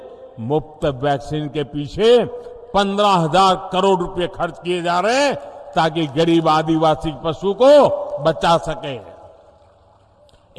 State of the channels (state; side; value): identical; both; correlation 1.00